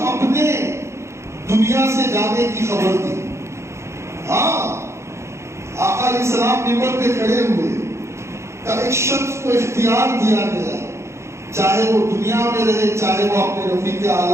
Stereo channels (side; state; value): left; late; 0.13 ms